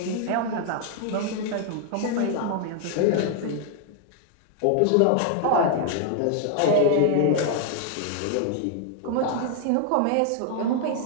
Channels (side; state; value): both; different; correlation 0.00